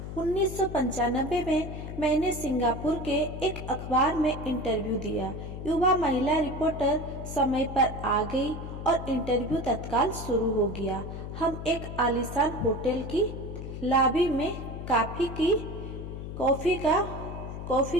1995 में मैंने सिंगापुर के एक अखबार में इंटरव्यू दिया। युवा महिला रिपोर्टर समय पर आ गई और इंटरव्यू तत्काल शुरू हो गया। हम एक आलीशान होटल की लॉबी में कॉफी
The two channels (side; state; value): left; noise; hum, 8 dB below the sound